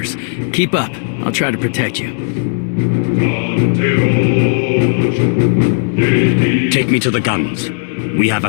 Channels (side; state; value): right; silent; digital silence